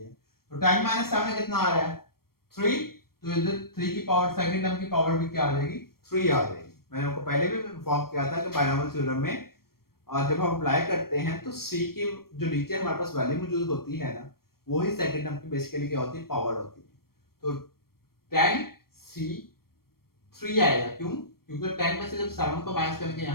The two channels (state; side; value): late; right; 0.94 ms